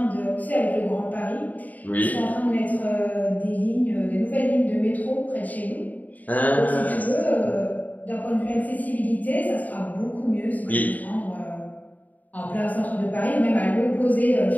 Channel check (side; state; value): right; late; 0.077 ms